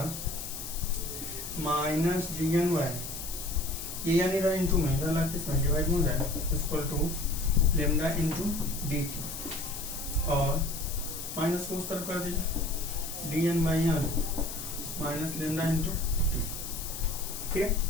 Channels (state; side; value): noise; left; hiss, 8 dB below the sound